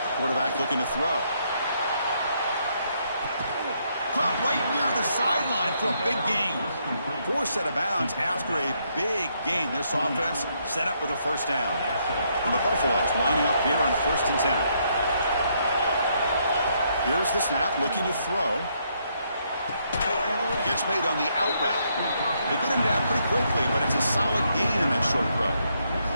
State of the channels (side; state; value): both; inverted; correlation -0.74